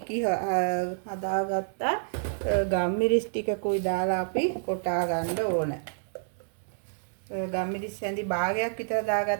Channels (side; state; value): left; silent; digital silence